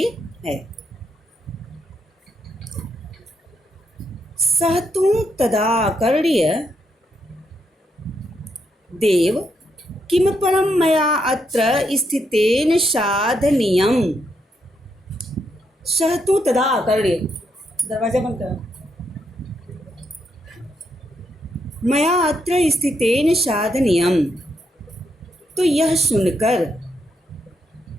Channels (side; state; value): both; normal; correlation 0.79